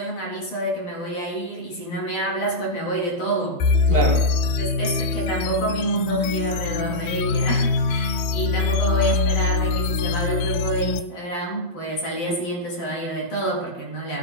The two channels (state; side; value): late; right; 12 ms